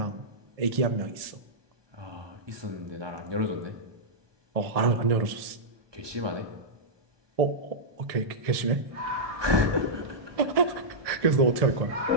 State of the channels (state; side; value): late; left; 1.7 ms